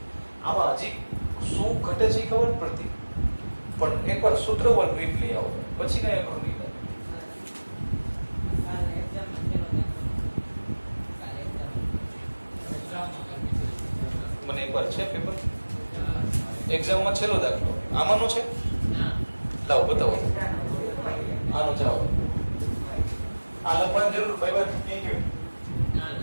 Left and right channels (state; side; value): inverted; both; correlation -1.00